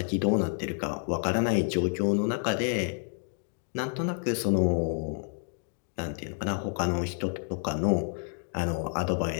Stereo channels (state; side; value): silent; right; 58 dB below the other